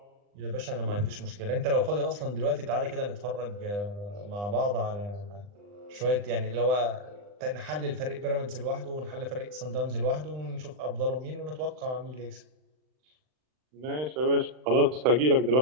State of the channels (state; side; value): late; left; 39 ms